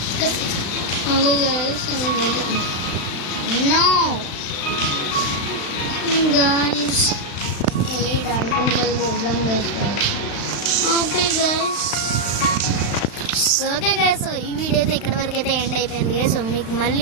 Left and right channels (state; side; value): late; right; 35 ms